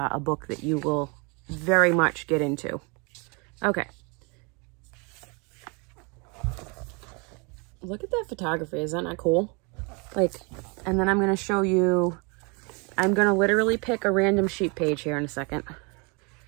book that you will very much get into. Okay. Look at that photography. Is that not cool? Like, and then I'm going to show you, I'm going to literally pick a random sheet page here in a second.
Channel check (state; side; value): quieter; left; 31.3 dB